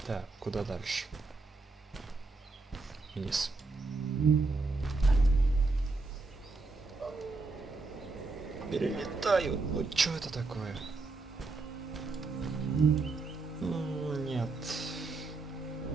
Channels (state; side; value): quieter; left; 3.6 dB